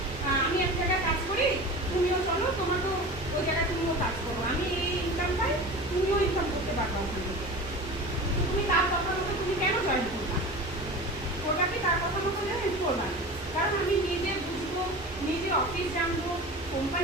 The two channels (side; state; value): both; normal; correlation 0.33